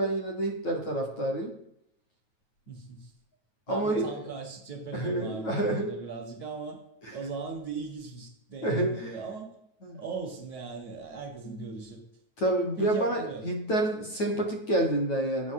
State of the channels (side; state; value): right; late; 9.2 ms